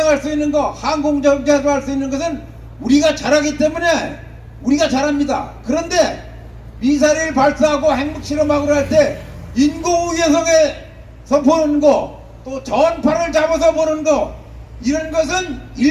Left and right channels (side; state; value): both; identical; correlation 1.00